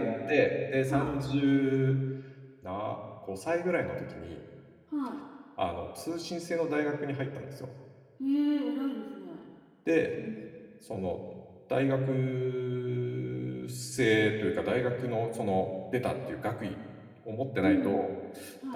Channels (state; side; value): identical; both; correlation 1.00